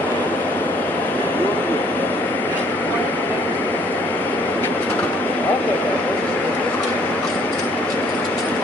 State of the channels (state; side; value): normal; both; correlation 0.62